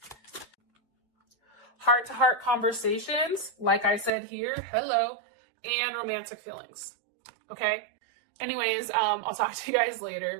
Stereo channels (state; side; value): drops out; left; at 4.1 s